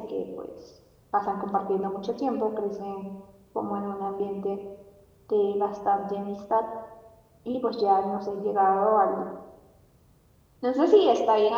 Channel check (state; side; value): identical; both; correlation 1.00